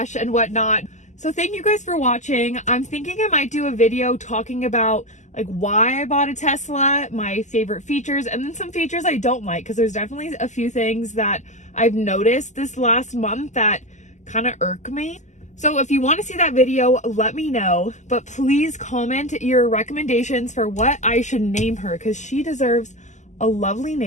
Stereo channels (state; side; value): late; right; 0.34 ms